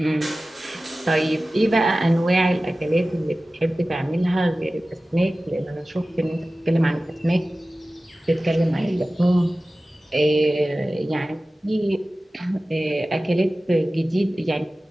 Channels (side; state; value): both; normal; correlation 0.96